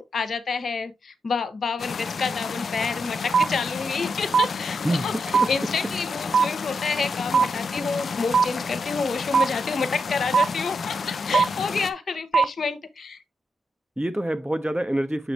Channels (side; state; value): both; normal; correlation 0.84